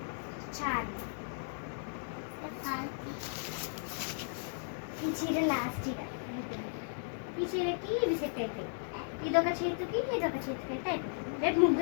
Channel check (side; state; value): right; silent; 54 dB below the other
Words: చాలు. ఈ చీర లాస్ట్ చీర. ఈ చీరకి ఇవి సెట్ అయిపోయి, ఇదొక చేతికి ఇదొక చేతికి అయితే అయిపోతుంది. రేపు